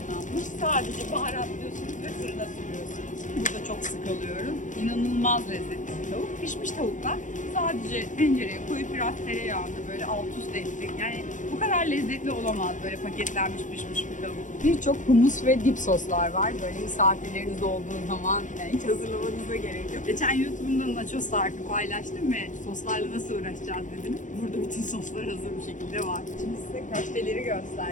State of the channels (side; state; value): right; late; 0.37 ms